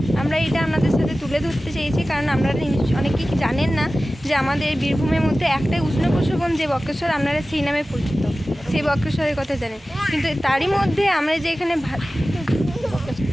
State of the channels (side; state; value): both; normal; correlation 0.96